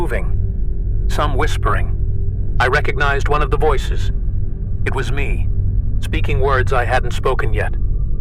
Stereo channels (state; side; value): identical; both; correlation 1.00